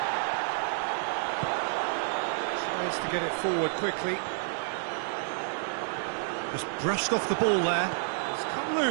Tries to get it forward quickly. Just brushed off the ball there. It's come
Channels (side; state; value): left; silent; 57 dB below the other